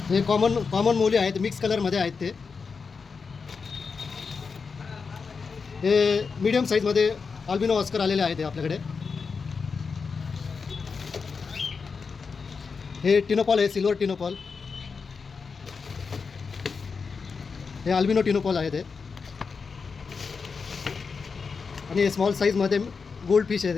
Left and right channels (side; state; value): right; quieter; 5.2 dB